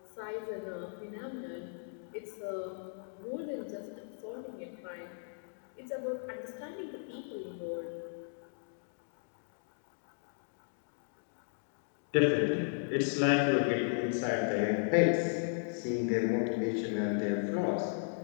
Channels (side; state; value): right; silent; digital silence